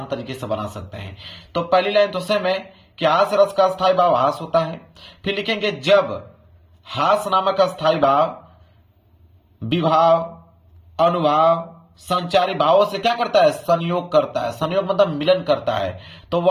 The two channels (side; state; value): both; identical; correlation 1.00